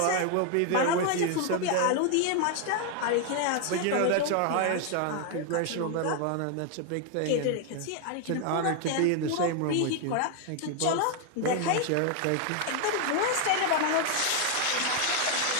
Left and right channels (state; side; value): different; both; correlation 0.01